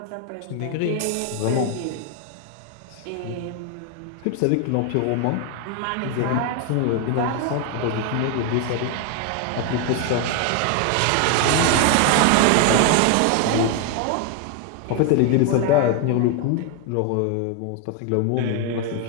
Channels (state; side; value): different; both; correlation 0.00